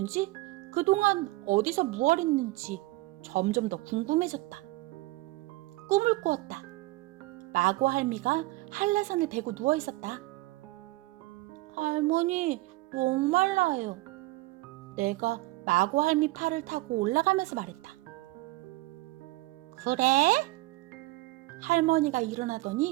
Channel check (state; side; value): quieter; left; 20.2 dB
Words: 그동안 어디서 무얼 했는지 점점 더 궁금해졌다. 꿈을 꾸었다. 마고 할미가 한라산을 베고 누워있었다. 할머니, 목말라요. 내가 마고 할미 팔을 타고 올라가면서 말했다. 그래? 할머니가